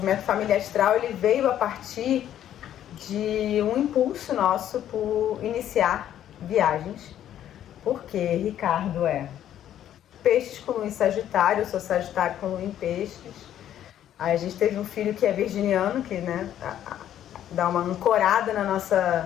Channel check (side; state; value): right; quieter; 11.1 dB